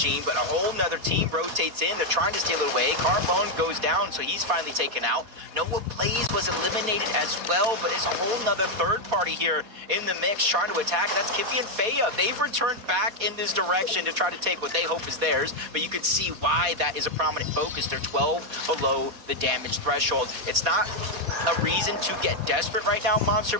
but a whole nother team rotates in. They're trying to steal it away. Carbone goes down, so he's finally taken out. Noah Plays was eliminated as well, but it's a whole nother third party here in the mix trying to attack. That's Kiffy and Faya. They've returned back in this direction to try to take what they hope is theirs, but you can see why that is a prominent focus. They're 12 below the damage threshold. It's not a reason to get desperate right now, Monster,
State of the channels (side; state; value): left; late; 4.4 ms